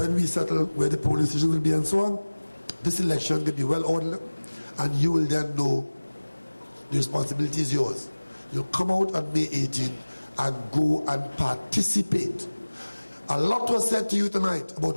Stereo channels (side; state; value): both; inverted; correlation -1.00